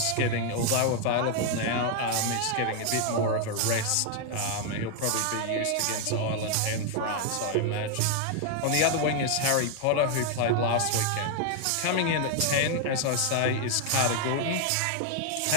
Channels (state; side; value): different; both; correlation 0.00